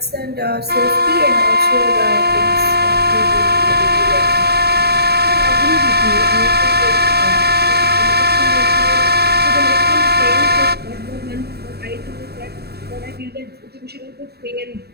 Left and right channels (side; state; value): left; late; 0.47 ms